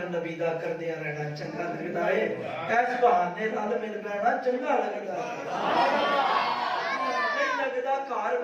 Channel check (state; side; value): identical; both; correlation 1.00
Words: نبی دا کردیا رہنا چنگا لگدا ہے اس بہانے نال مل بیٹھنا چنگا لگدا ہے نہیں لگدا گھر